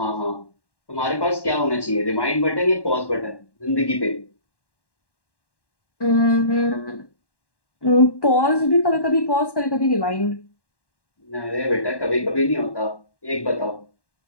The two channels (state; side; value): late; right; 1.1 ms